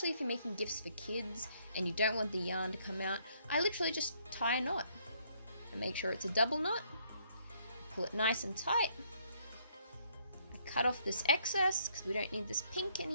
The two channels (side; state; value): both; inverted; correlation -0.68